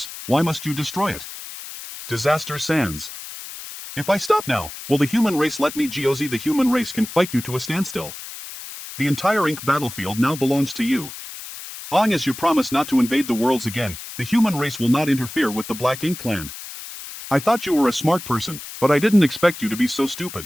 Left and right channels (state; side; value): noise; left; hiss, 12 dB below the sound